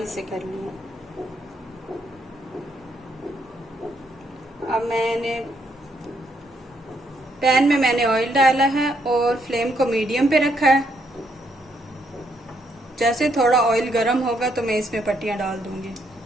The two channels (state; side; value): normal; both; correlation 0.74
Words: कर लिए। अब मैंने पैन में मैंने ऑयल डाला है और फ्लेम को मीडियम पे रखा है। जैसे थोड़ा ऑयल गर्म होगा तो मैं इसमें पट्टियां डाल दूंगी।